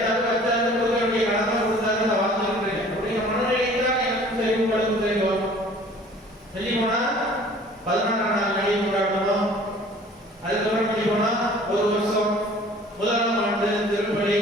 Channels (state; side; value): normal; both; correlation 0.50